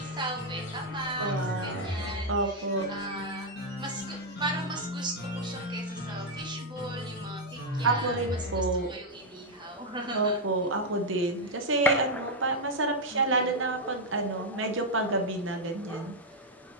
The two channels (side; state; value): both; normal; correlation -0.01